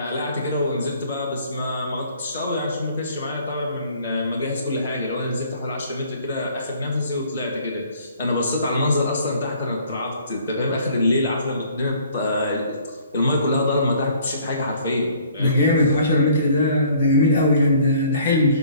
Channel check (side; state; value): both; inverted; correlation -0.57